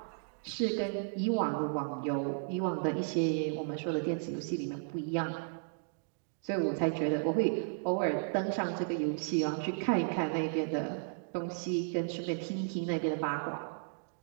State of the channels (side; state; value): left; silent; digital silence